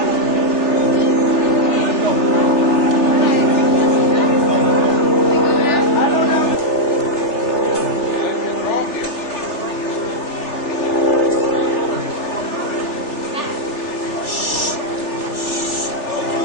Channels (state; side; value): late; right; 3.4 ms